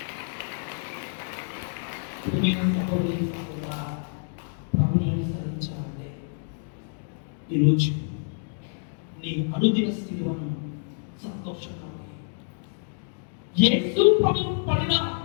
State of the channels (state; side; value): silent; right; digital silence